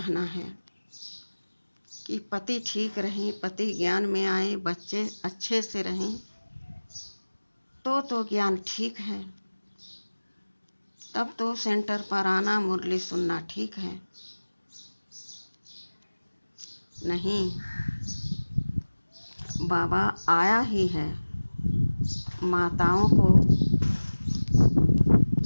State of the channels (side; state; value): both; inverted; correlation -1.00